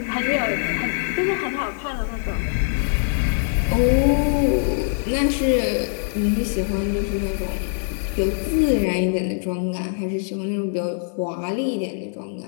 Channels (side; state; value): right; silent; digital silence